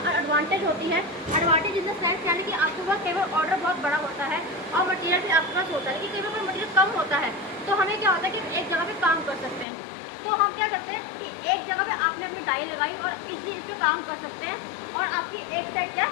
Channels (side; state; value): right; drops out; at 9.7 s